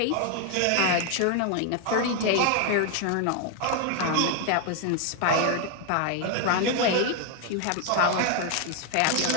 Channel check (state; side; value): different; both; correlation 0.00